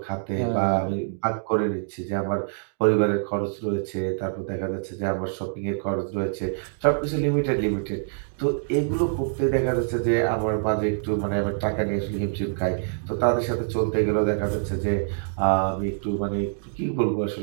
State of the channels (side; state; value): left; silent; digital silence